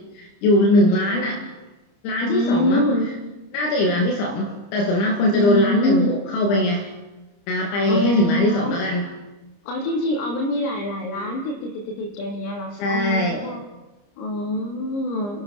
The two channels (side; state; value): right; late; 30 ms